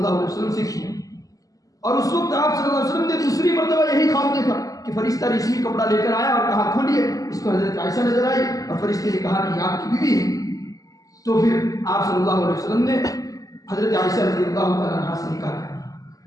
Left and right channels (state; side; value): late; right; 0.17 ms